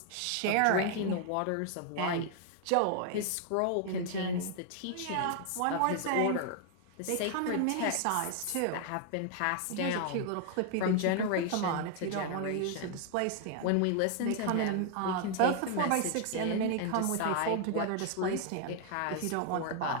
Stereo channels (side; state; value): both; different; correlation 0.00